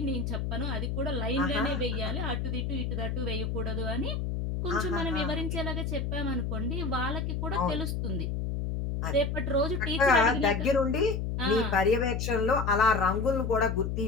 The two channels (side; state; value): left; noise; hum, 1 dB below the sound